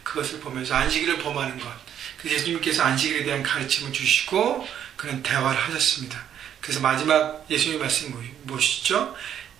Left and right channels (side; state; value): left; quieter; 9.7 dB